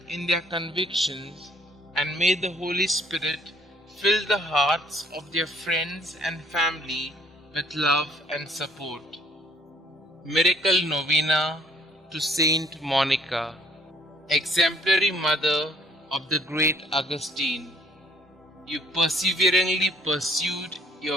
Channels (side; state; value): both; normal; correlation 0.61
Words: in their convictions, and may the Holy Spirit fill the hearts of their friends and family with love and support. Miracle Novena to Saint Monica, exemplary mother of the great Augustine. You perseveringly pursued